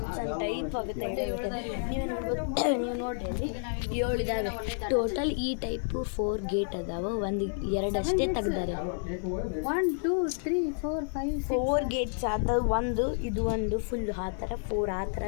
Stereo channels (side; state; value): right; silent; 58 dB below the other